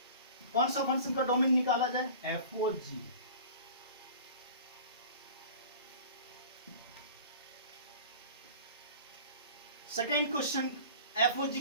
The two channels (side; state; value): both; inverted; correlation -0.41